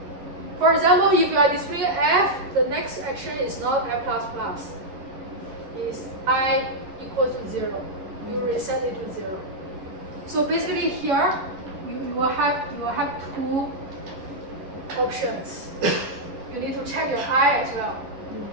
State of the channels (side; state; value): left; late; 11 ms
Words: For example, if you are displaying F, the next action is not F++. It's I equal to 0. You reset it to 0. So basically here, you will have two options. You need to check your I as well.